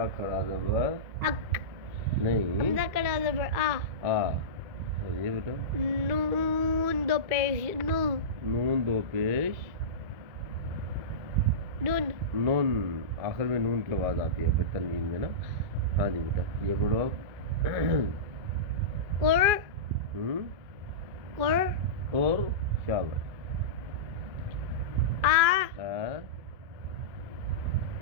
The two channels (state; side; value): late; left; 2.6 ms